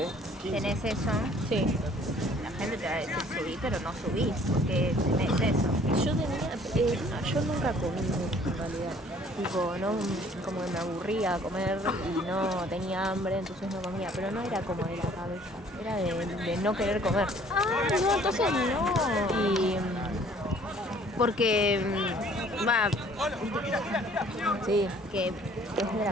tenés eso, Sí. la gente te va a decir subí, pero no subís, porque tenés eso. Yo nunca comí mucho en realidad. Tipo, no, como que me aburría comer y no tenía hambre, entonces no comía. Pero no era como de la cabeza, era de no querer comer. Ah, no, entonces no. Y Porque va, sí, que es de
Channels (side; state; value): both; normal; correlation 0.56